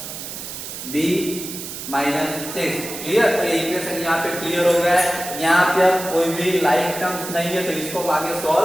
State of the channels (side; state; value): right; noise; hiss, 9 dB below the sound